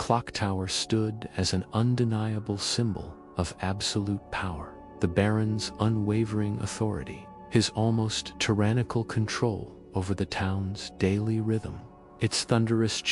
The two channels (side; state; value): both; identical; correlation 1.00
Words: stood as an undeniable symbol of absolute power, the Baron's unwavering authority, his almost tyrannical control over the town's daily rhythm. Its thunderous